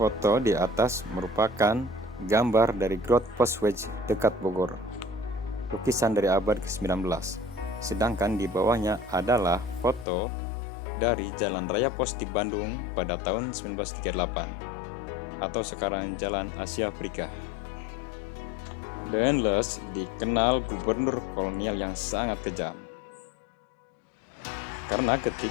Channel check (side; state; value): right; drops out; at 10.1 s